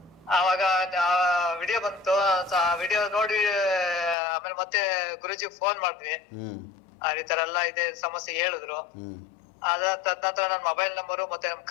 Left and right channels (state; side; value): drops out; right; at 4.2 s